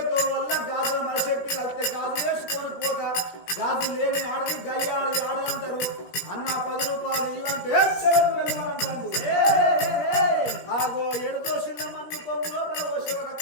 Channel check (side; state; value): right; late; 17 ms